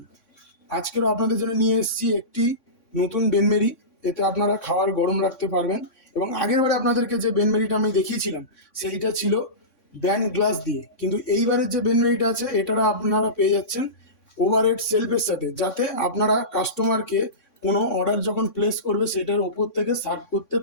আজকেরও আপনাদের জন্য নিয়ে এসেছি একটি নতুন বেনমেরি। এতে আপনারা খাবার গরম রাখতে পারবেন। এবং আগের বারে আপনাদেরকে যে বেনমেরিটা আমি দেখিয়েছিলাম সেইটা ছিল ব্যান্ড গ্লাস দিয়ে, কিন্তু এইবারের যে বেনমেরিটা আছে এটা আপনারা পেয়ে যাচ্ছেন ওভারহেড সেলফের সাথে, যাতে আপনারা কাস্টমারকে কোনো অর্ডার যখন প্লেস করবে সেটার ওপর থেকে সার্ভ করতে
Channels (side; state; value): right; late; 3.6 ms